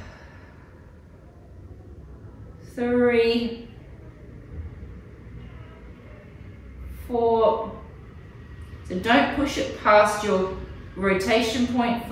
3, 4. So don't push it past your rotation point.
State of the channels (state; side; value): identical; both; correlation 1.00